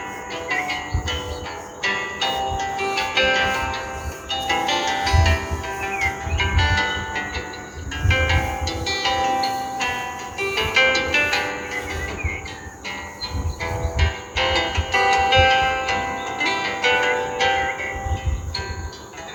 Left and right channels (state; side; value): identical; both; correlation 1.00